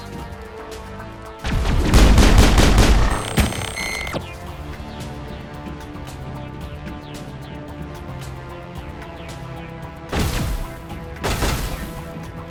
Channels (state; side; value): identical; both; correlation 1.00